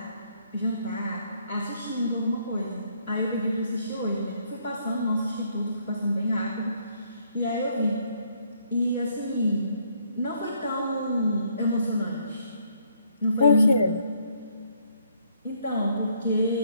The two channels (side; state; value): both; inverted; correlation -0.69